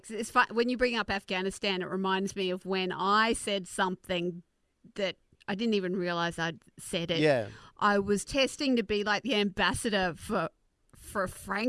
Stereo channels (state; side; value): identical; both; correlation 1.00